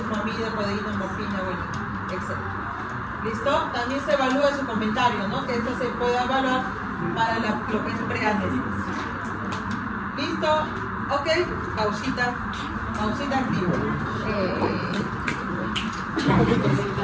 codeína, morfina, bueno, etc. ¿Listo? También se evalúa su comentario, ¿no? Que esto se puede evaluar para lo que es preanestesia. ¿Listo? Ok, pausita activa.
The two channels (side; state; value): both; identical; correlation 1.00